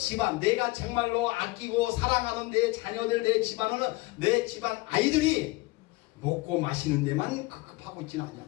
내가 정말로 아끼고 사랑하는 내 자녀들 내 집안은 내 집안 아이들이 먹고 마시는 데만 급급하고 있지는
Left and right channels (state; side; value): quieter; right; 21.9 dB